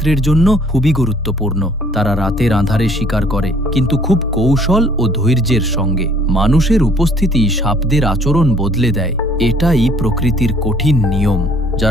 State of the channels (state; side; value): normal; both; correlation 0.59